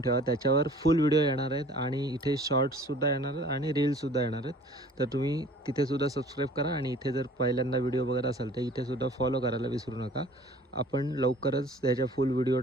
ठेवा. त्याच्यावर फुल व्हिडिओ येणार आहेत आणि इथे शॉर्ट्ससुद्धा येणार आहेत आणि रील्ससुद्धा येणार आहेत. तर तुम्ही तिथेसुद्धा सबस्क्राईब करा आणि इथे जर पहिल्यांदा व्हिडिओ बघत असाल तर इथेसुद्धा फॉलो करायला विसरू नका. आपण लवकरच त्याच्या फुल व्हिडिओ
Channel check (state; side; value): normal; both; correlation 0.50